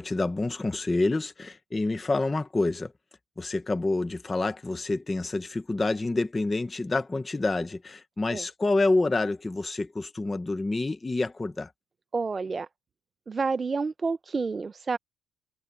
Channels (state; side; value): normal; both; correlation 0.96